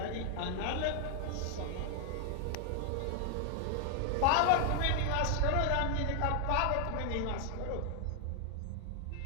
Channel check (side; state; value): both; different; correlation 0.00